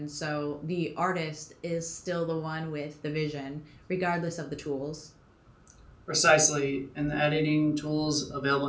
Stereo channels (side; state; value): both; identical; correlation 1.00